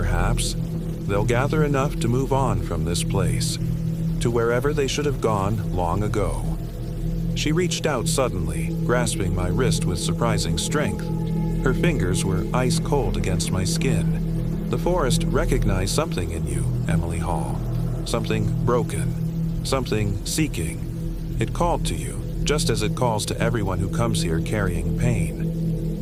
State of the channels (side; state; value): both; identical; correlation 1.00